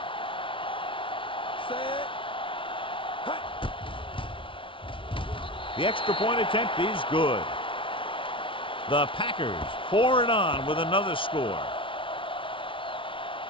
The extra point attempt is good. The Packers pour it on with another score.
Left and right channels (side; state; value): right; late; 0.25 ms